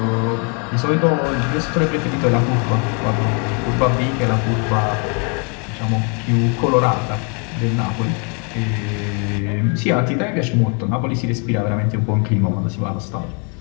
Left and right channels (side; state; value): right; quieter; 36.7 dB